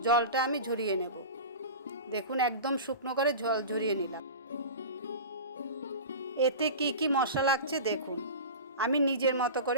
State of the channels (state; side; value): inverted; both; correlation -0.31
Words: জলটা আমি ঝরিয়ে নেব। দেখুন একদম শুকনো করে জল ঝরিয়ে নিলাম। এতে কি কি মশলা লাগছে দেখুন, আমি নিজের মতো